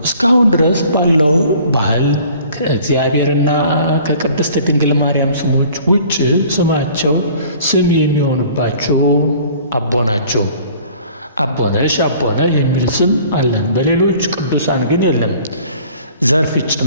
እስካሁን ድረስ ባለው ባህል ከእግዚአብሔርና ከቅድስት ድንግል ማርያም ስሞች ውጭ ስማቸው ስም የሚሆንባቸው አቦ ናቸው። አቦነሽ፣ አቦነ የሚል ስም አለን። በሌሎች ቅዱሳን ግን የለም። ዘርፍ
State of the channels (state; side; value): inverted; both; correlation -0.51